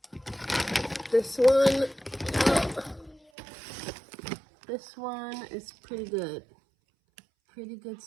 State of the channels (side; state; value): left; drops out; at 3.2 s